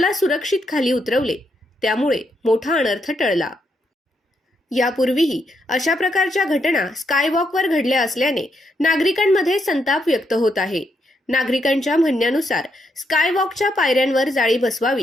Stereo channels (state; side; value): normal; both; correlation 0.79